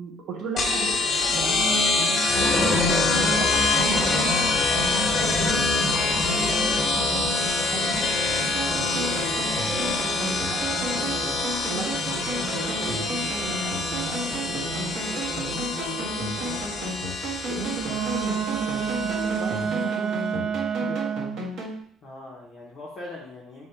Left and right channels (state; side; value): normal; both; correlation 0.60